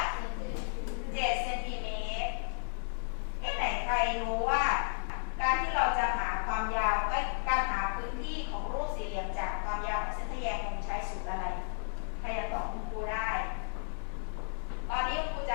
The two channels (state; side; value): silent; right; digital silence